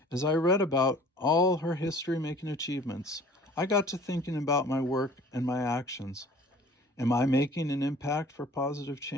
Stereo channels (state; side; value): normal; both; correlation 0.49